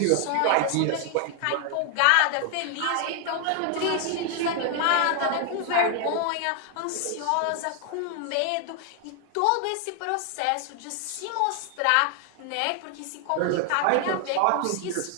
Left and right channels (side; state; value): both; different; correlation 0.00